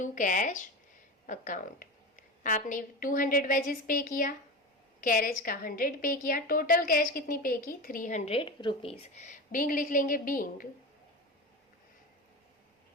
cash account. आपने 200 वेजेस पे किया, कैरेज का 100 पे किया, टोटल कैश कितनी पे की? ₹300। बीइंग लिख लेंगे, being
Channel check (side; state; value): both; normal; correlation 0.25